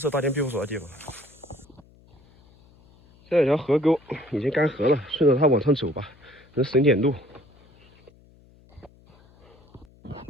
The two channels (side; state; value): left; noise; hum, 28 dB below the sound